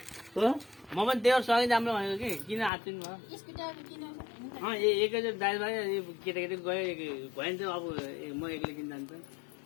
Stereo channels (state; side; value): drops out; right; at 2.7 s